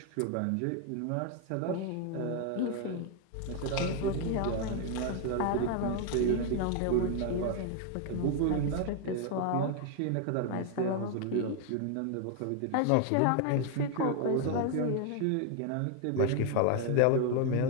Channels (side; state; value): both; different; correlation 0.00